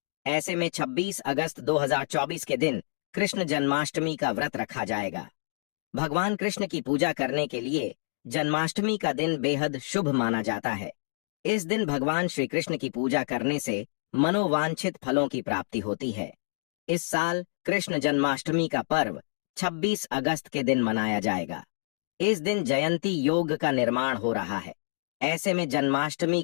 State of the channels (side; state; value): right; silent; digital silence